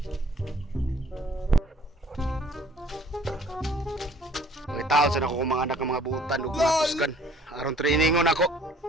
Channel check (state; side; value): normal; both; correlation 0.56